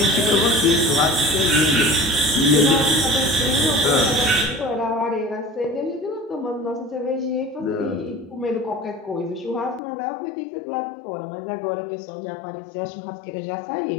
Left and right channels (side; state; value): right; drops out; at 9.8 s